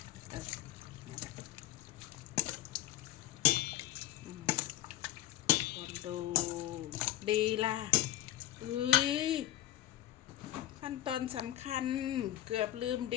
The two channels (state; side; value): quieter; right; 13.9 dB